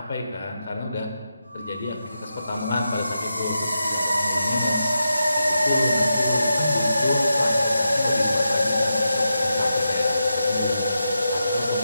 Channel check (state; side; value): inverted; both; correlation -0.87